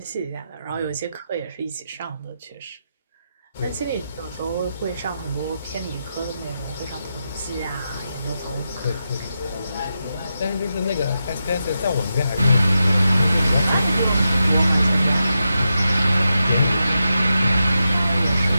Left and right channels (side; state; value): both; inverted; correlation -0.88